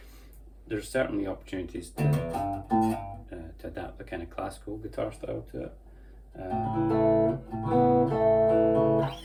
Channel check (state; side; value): identical; both; correlation 1.00